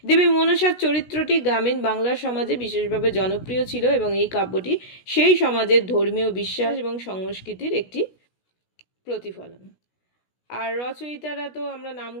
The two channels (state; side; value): late; right; 16 ms